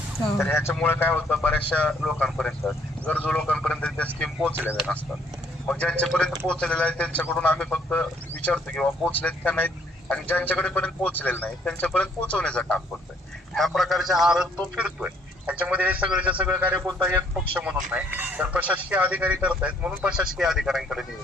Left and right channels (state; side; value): normal; both; correlation 0.65